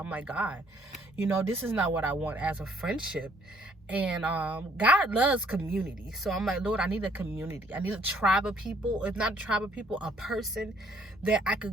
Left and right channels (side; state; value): both; normal; correlation 0.64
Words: like, God, you know, this is not what I want as a friendship. And God loves community. So I'm like, Lord, I need a community. I need a tribe of people. If not a tribe of people, a person that I